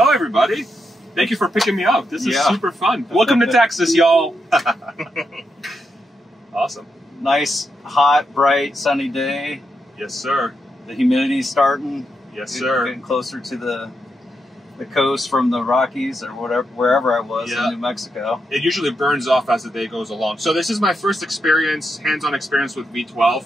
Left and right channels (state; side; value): normal; both; correlation 0.84